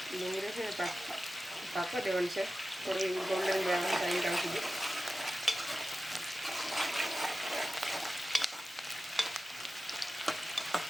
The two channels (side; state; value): both; normal; correlation 0.94